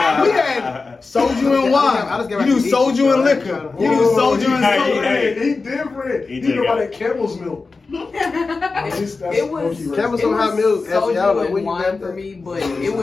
soju and wine. I just get You do back to soju eating, and so liquor. You do Whoa, soju and hey, soda. hey. He different. He He did know about got- that camel's milk. It was Campbell's it don't have was milk. Y'all know soju where and you wine got for that? me, but it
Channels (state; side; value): quieter; right; 4.1 dB